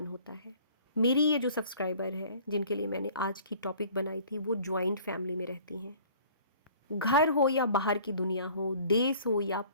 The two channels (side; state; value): both; inverted; correlation -0.51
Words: होता है। मेरी ये जो सब्सक्राइबर है जिनके लिए मैंने आज की टॉपिक बनाई थी, वो जॉइंट फैमिली में रहती हैं। घर हो या बाहर की दुनिया हो, देश हो या